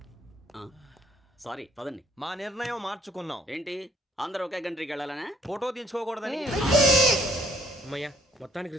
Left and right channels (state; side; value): normal; both; correlation 0.62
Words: సారీ, పదండి. మా నిర్ణయం మార్చుకున్నాం. ఏంటి, అందరూ ఒకే కంట్రీకి వెళ్ళాలనే? ఫోటో తీసుకోకూడదని. అమ్మయ్యా, మొత్తానికి